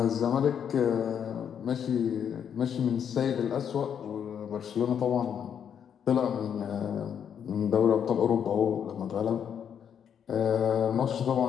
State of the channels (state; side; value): quieter; right; 8.2 dB